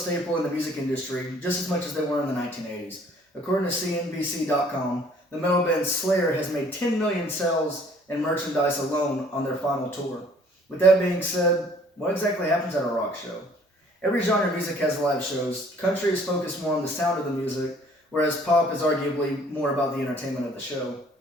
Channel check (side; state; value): both; normal; correlation 0.57